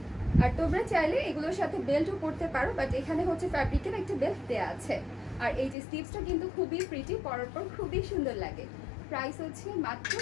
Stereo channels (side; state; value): right; drops out; at 5.8 s